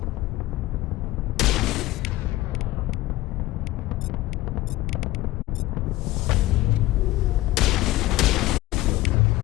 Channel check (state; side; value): quieter; right; 17.1 dB